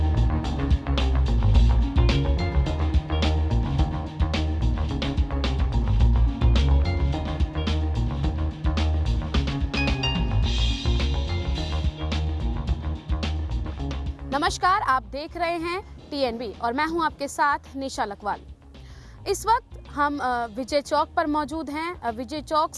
नमस्कार, आप देख रहे हैं TNB और मैं हूं आपके साथ निशा लकवाल। इस वक्त हम विजय चौक पर मौजूद हैं। विजय चौक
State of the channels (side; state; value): both; identical; correlation 1.00